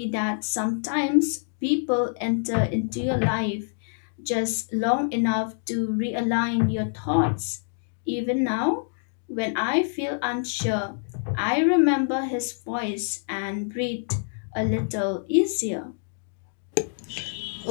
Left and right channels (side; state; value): right; silent; digital silence